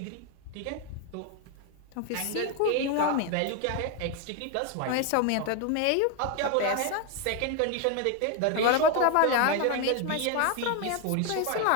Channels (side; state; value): both; different; correlation 0.01